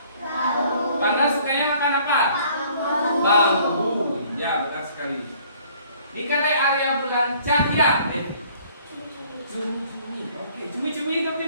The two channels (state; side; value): inverted; both; correlation -0.57